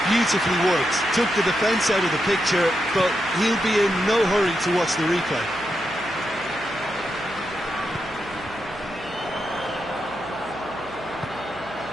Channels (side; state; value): right; noise; hum, 21 dB below the sound